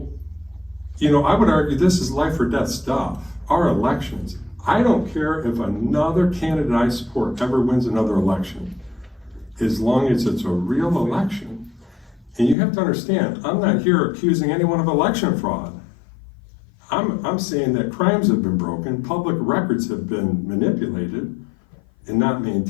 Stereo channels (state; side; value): drops out; right; at 12.6 s